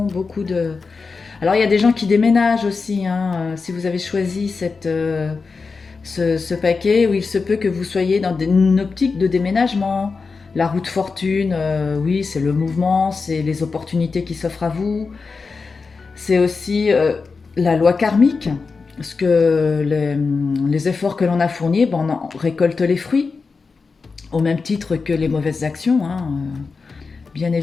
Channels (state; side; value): quieter; right; 4.6 dB